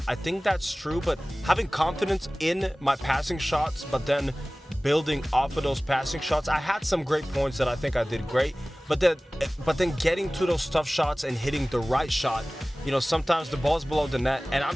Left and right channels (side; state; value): both; normal; correlation 0.98